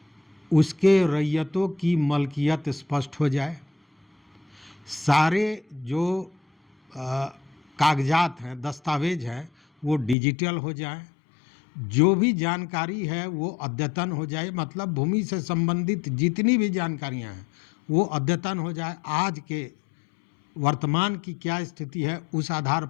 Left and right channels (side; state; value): right; drops out; at 10.2 s